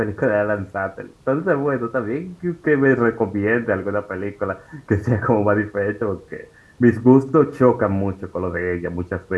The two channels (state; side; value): identical; both; correlation 1.00